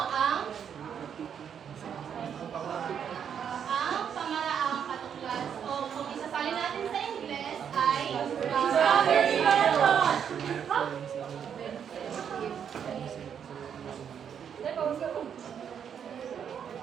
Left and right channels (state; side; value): quieter; left; 8.1 dB